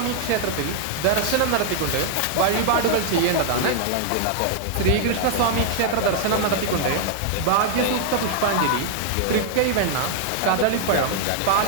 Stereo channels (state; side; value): different; both; correlation -0.01